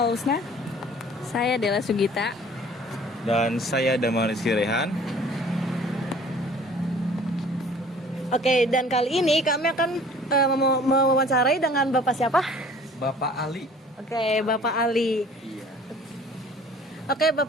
Saya Dela Sugita. Dan saya Damar Rizky Rehan. Oke, dan kali ini kami akan mewawancarai dengan Bapak siapa? Bapak Ali. Oke, Bapak Ali. Iya. Oke,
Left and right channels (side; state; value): both; normal; correlation 0.50